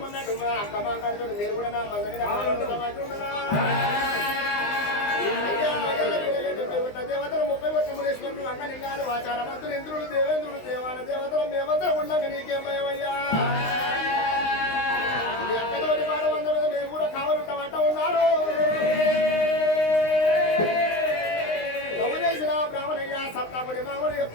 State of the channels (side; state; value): right; late; 19 ms